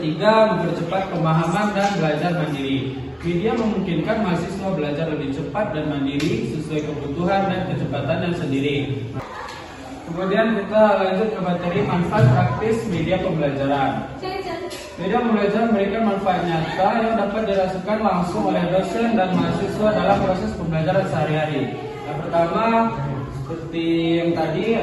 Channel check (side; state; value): both; identical; correlation 1.00